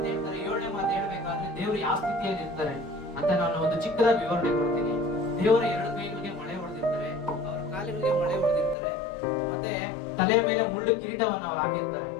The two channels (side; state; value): right; drops out; at 8.8 s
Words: ಹೇಳ್ತಾರೆ. 7ನೇ ಮಾತು ಹೇಳ್ಬೇಕಾದ್ರೆ ದೇವರು ಯಾವ ಸ್ಥಿತಿಯಲ್ಲಿ ಇರ್ತಾರೆ ಅಂತ ನಾನು ಒಂದು ಚಿಕ್ಕದಾಗಿ ವಿವರಣೆ ಕೊಡ್ತೀನಿ. ದೇವರ 2 ಕೈಗಳಿಗೆ ಮಳೆ ಹೊಡೆದಿರ್ತಾರೆ, ಅವರ ಕಾಲಿಗಳಿಗೆ ಮಳೆ ಹೊಡೆದಿರ್ತಾರೆ, ಮತ್ತೆ ತಲೆಯ ಮೇಲೆ ಮುಳ್ಳು ಕಿರೀಟವನ್ನು ಅವ್ರು ಹಾಕಿರ್ತಾರೆ.